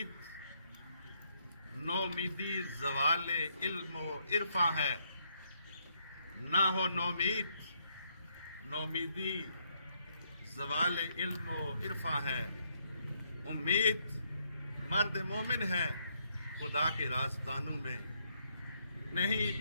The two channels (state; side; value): inverted; both; correlation -0.73